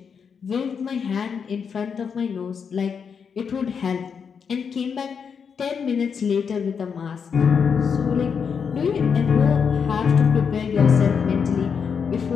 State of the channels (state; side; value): quieter; right; 6.5 dB